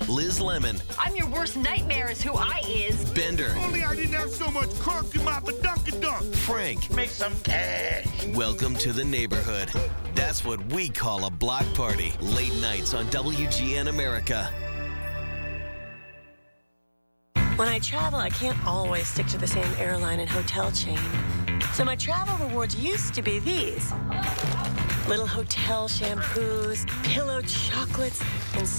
Liz Lemon. I'm your worst nightmare is who I is. Bender. Only I didn't have so much crunk in my badunkadunk. Frank. Make some cash. Welcome to the neighborhood. That's what we call a block party. Late nights on WGN America. When I travel, I can't always stick to the same airline and hotel chain. So my travel rewards used to be these. Little hotel shampoos, pillow chocolates, and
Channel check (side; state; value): both; inverted; correlation -1.00